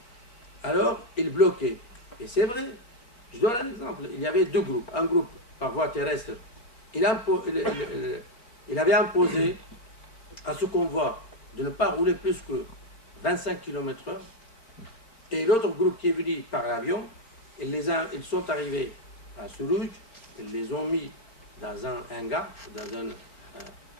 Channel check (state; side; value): late; right; 4.3 ms